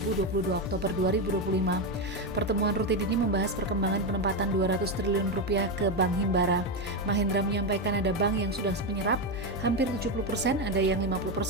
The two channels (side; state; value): right; noise; hum, 18 dB below the sound